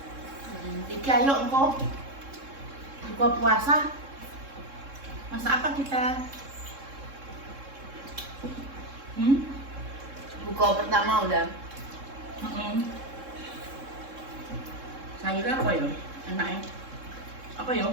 Iki ayo engko buka puasa. Masak apa kita? Buka pertama udah. Sayurnya apa ya? Enaknya? Apa ya?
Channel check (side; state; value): left; late; 3.7 ms